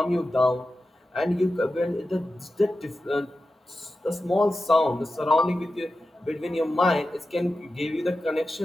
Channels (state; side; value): normal; both; correlation 0.92